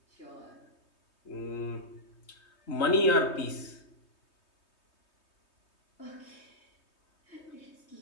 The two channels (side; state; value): right; late; 3.2 ms